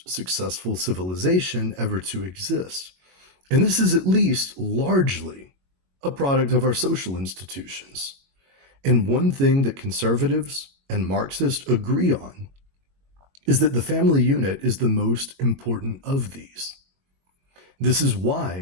successful civilization ever to exist. And this is at least largely a product of our social institutions. And one thing that conservatives and Marxists agree on is that the family unit is the most important of these. This is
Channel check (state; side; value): late; left; 22 ms